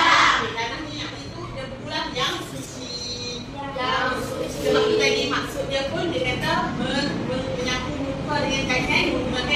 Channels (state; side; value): identical; both; correlation 1.00